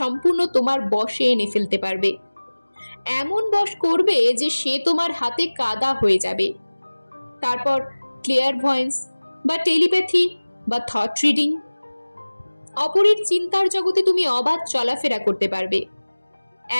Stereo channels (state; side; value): inverted; both; correlation -1.00